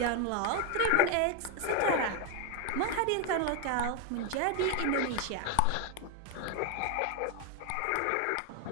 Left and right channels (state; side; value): different; both; correlation 0.01